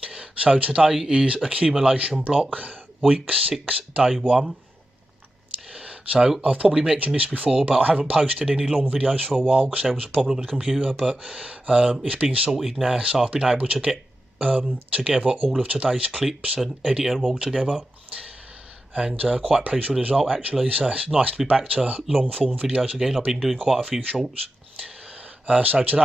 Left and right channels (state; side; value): normal; both; correlation 0.91